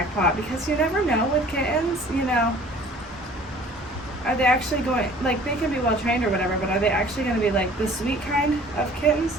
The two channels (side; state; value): both; normal; correlation 0.50